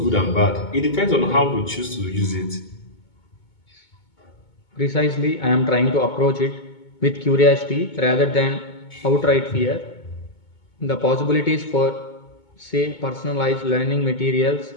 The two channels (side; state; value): right; late; 2.2 ms